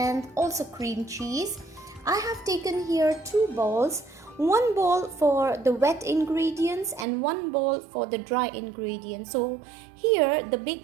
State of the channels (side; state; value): left; drops out; at 7.1 s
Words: also cream cheese. I have taken here 2 bowls. One bowl for the wet ingredients and one bowl for the dry ingredients. So here the